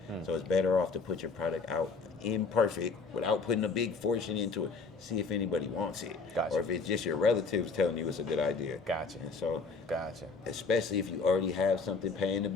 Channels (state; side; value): quieter; right; 4.4 dB